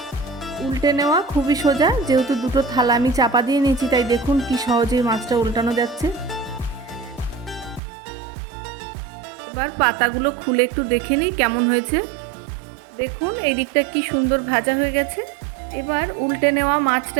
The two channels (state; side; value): drops out; left; at 7.8 s